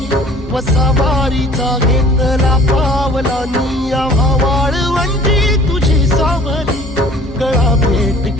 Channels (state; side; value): normal; both; correlation 0.50